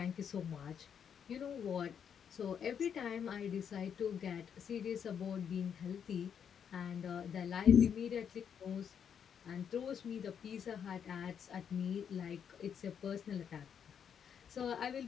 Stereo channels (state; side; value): quieter; right; 7.9 dB